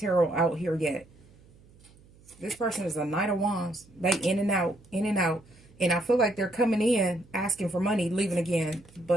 out here yet. This person is a Knight of Wands. They in and out, in and out. And I feel like they're coming in, asking for money, leaving again.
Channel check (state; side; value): noise; right; hum, 26 dB below the sound